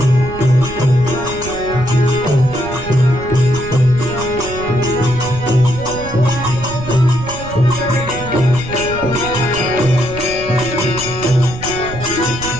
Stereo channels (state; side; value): noise; right; rumble, 11 dB below the sound